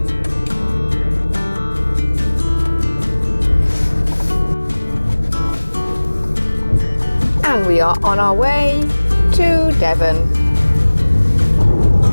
And we are on our way to Devon.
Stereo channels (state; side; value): inverted; both; correlation -1.00